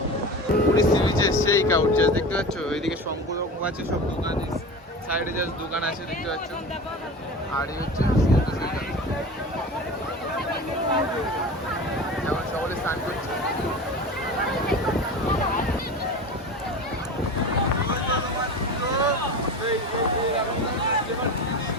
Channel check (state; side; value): normal; both; correlation 0.31